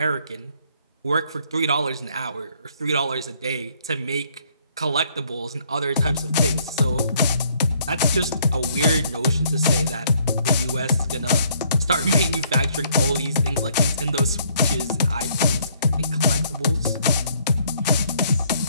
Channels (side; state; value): both; inverted; correlation -0.65